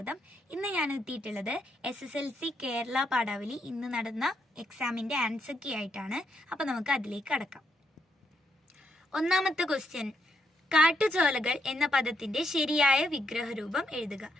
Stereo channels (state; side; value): normal; both; correlation 0.78